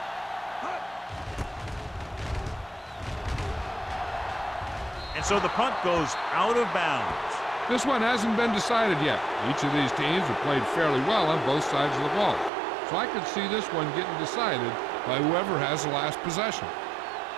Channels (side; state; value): left; drops out; at 12.5 s